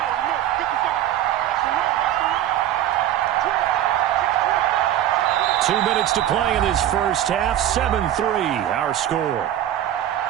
Two minutes to play in this first half. 7-3, our score.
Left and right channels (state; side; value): quieter; left; 11.8 dB